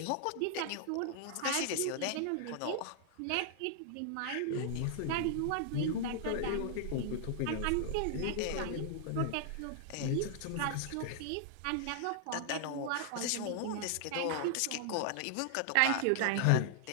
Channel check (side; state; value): both; different; correlation 0.00